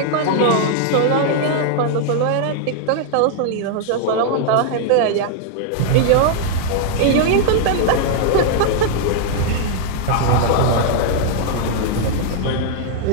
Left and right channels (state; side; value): different; both; correlation 0.00